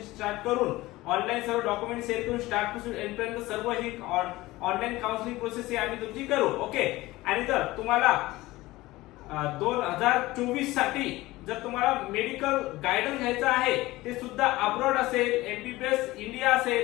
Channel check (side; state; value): right; quieter; 18.8 dB